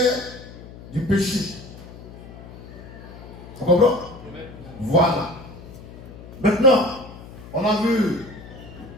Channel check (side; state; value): left; noise; hum, 16 dB below the sound